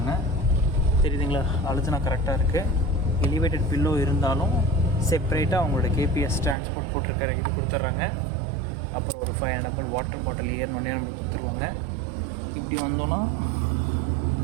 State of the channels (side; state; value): left; drops out; at 6.6 s